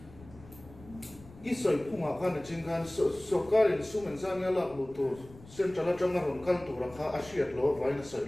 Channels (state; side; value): noise; left; rumble, 20 dB below the sound